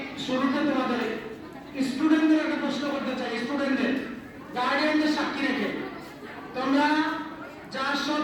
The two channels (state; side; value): identical; both; correlation 1.00